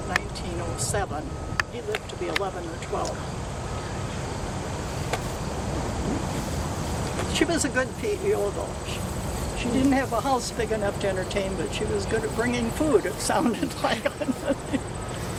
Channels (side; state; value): both; identical; correlation 1.00